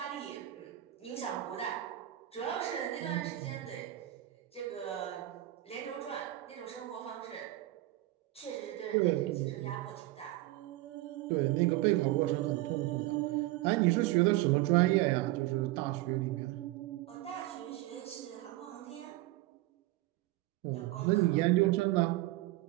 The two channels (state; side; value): quieter; left; 16.8 dB